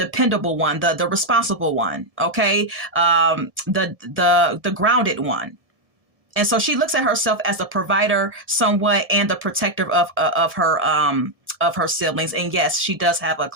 one, the responsible one, okay? The grounded one. And so she looks at herself as the provider somewhat and the protector of her siblings. And yes, she does have a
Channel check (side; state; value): left; late; 1.7 ms